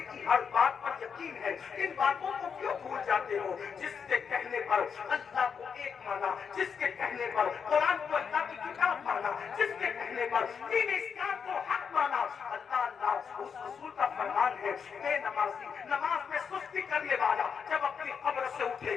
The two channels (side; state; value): right; quieter; 6.5 dB